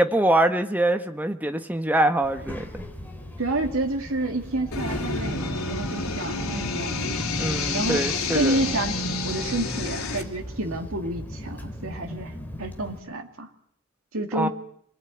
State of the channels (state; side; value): normal; both; correlation 0.50